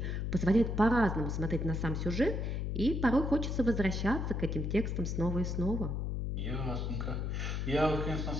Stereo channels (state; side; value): noise; left; hum, 1 dB below the sound